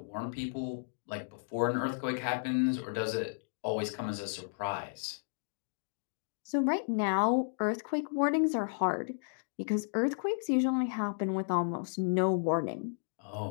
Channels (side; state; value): right; silent; digital silence